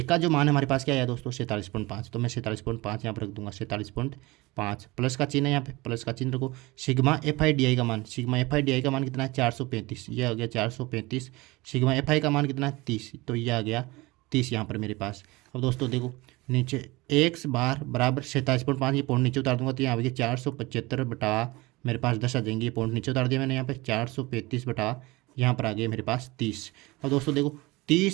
का जो मान है हमारे पास क्या है दोस्तों 47.5, तो मैं 47.5 यहाँ पर रख दूंगा, 47.5 प्लस का चिन्ह है, यहाँ पे प्लस का चिन्ह रखो। सिग्मा एफ आई डी आई का मान, सिग्मा एफ आई डी आई का मान कितना है 435, ये आ गया 435। सिग्मा एफ आई का मान कितना है 30, तो ये आ गया 30 यहाँ पर मेरे पास। अब दोस्तों देखो नीचे एक्स बार बराबर 47.5, ये पॉइंट नीचे उतार दूंगा तो यहाँ पे 475 बटा मेरे पास 10 आ जाएंगे, ये पॉइंट नीचे उतार दिया मैंने, यहाँ पे 435 बटा यहाँ पर आ गया मेरे पास 30। अब दोस्तों देखो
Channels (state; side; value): quieter; left; 22.2 dB